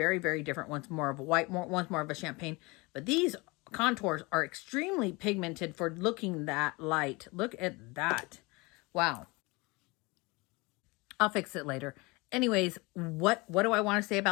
very different. One's more of a white, one's more of a champagne. But these contours are extremely pigmented for looking that light. Look at that. Wow. I'll fix it later. Anyways, what do I want to say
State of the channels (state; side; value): quieter; right; 25.2 dB